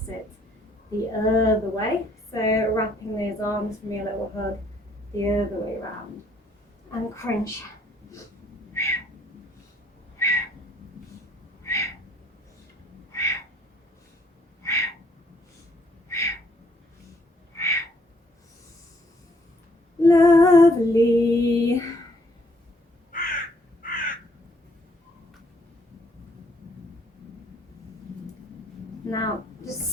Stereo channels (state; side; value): normal; both; correlation 0.66